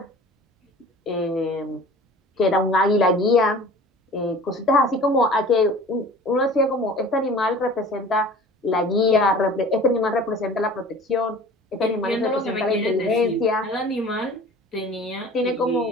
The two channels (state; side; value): normal; both; correlation 0.43